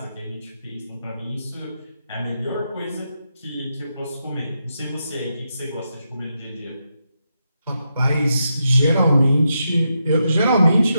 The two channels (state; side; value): inverted; both; correlation -0.84